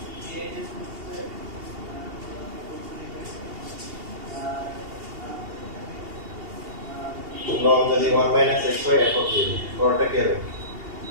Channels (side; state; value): left; late; 2.8 ms